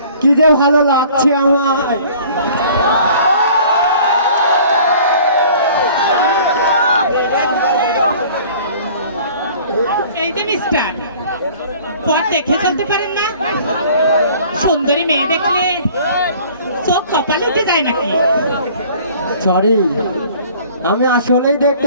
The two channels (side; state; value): both; inverted; correlation -0.50